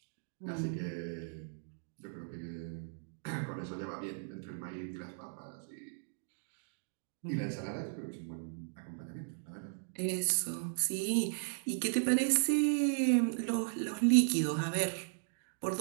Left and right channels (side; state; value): left; silent; digital silence